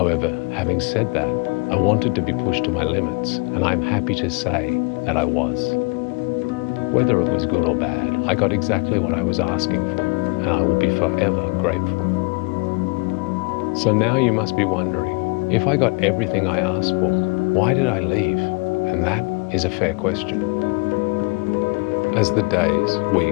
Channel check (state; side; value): quieter; right; 30.1 dB